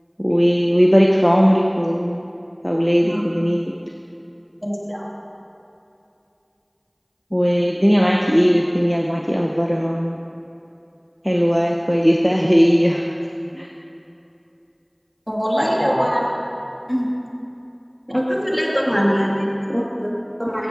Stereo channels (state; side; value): identical; both; correlation 1.00